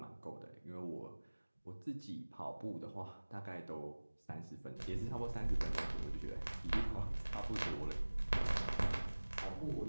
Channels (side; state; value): both; inverted; correlation -1.00